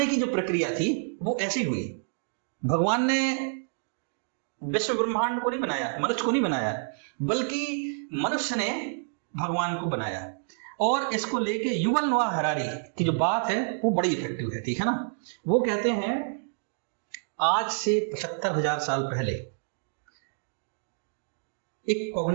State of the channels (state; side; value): silent; left; digital silence